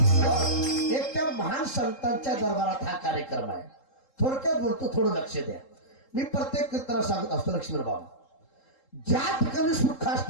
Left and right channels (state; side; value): late; right; 3.7 ms